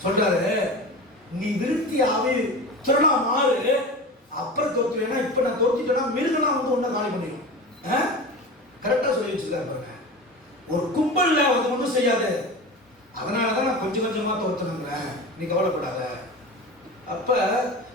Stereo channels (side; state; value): both; normal; correlation 0.30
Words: சொல்றாரு. நீ விருத்தி ஆவி திறனா மாறு, அப்புறம் தோத்துனா இப்ப நான் தோத்திட்டேன்னா மிருகலாம் வந்து ஒன்னும் காலி பண்ணிடும். கரெக்டா சொல்லி வச்சிருக்காரு பாருங்க. ஒரு கும்பல்ல வந்து ஒன்றும் செய்யாது, அதனாலதான் நான் கொஞ்சம் கொஞ்சமா தோத்துனுங்கிறேன், நீ கவலைப்படாத. அப்ப